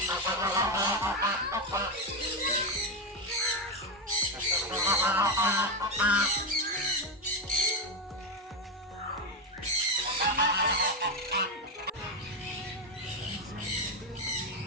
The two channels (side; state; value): both; normal; correlation 0.09